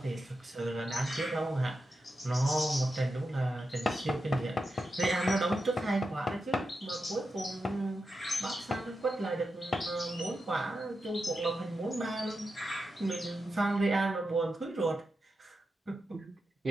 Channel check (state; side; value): normal; both; correlation 0.89